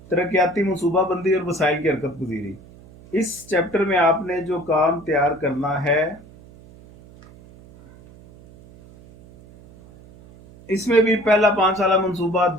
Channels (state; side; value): noise; right; hum, 22 dB below the sound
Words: तरक्याती मनसूबाबंदी और वसाइल की हरकत पजीरी। इस चैप्टर में आपने जो काम तैयार करना है, इसमें भी पहला 5 साला मनसूबा,